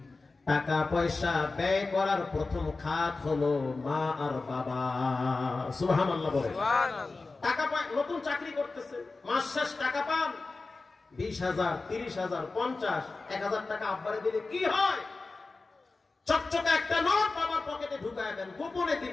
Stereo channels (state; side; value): quieter; right; 3.7 dB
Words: টাকা পয়সা ব্যয় করার প্রথম খাত হলো মা আর বাবা। সুবহানাল্লাহ বলে। সুবহানাল্লাহ। টাকা পায়, নতুন চাকরি করতেছে, মাস শেষ টাকা পান 20,000, 30,000, 50, 1,000 টাকা আব্বারে দিলে কি হয়? চকচকে একটা নোট বাবার পকেটে ঢুকায় দেন, গোপনে